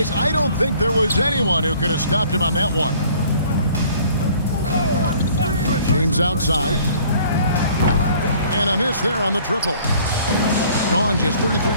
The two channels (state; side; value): inverted; both; correlation -0.55